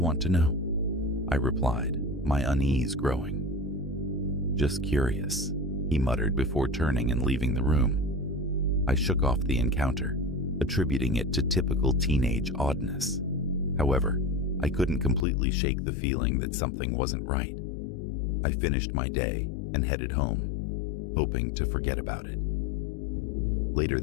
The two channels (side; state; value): right; drops out; at 15.2 s